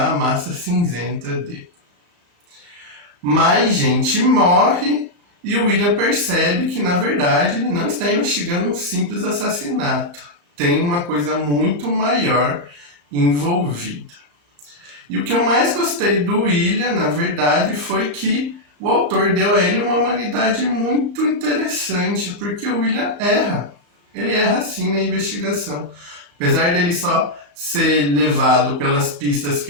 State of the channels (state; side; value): late; left; 34 ms